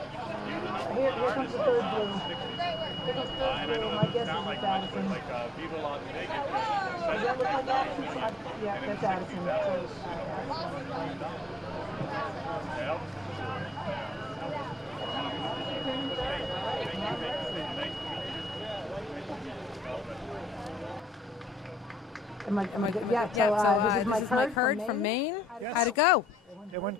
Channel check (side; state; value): both; normal; correlation 0.76